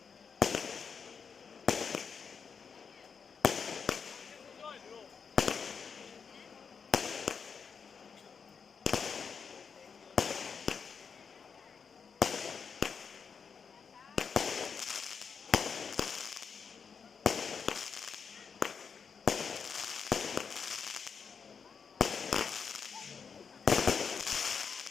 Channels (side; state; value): right; quieter; 6.1 dB